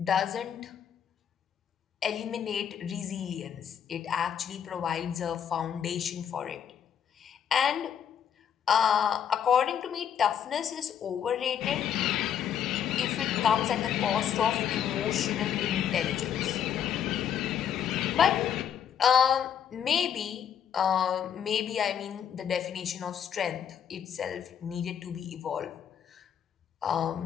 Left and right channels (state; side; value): quieter; right; 8.8 dB